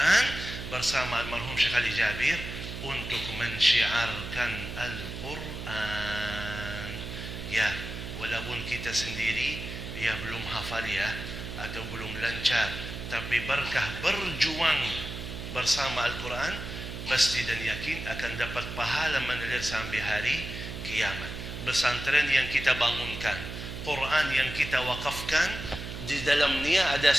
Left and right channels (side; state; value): right; noise; hum, 8 dB below the sound